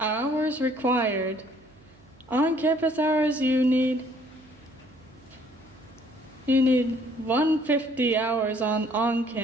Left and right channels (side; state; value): right; noise; hum, 29 dB below the sound